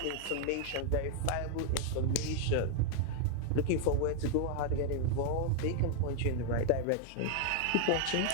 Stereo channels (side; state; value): both; different; correlation 0.00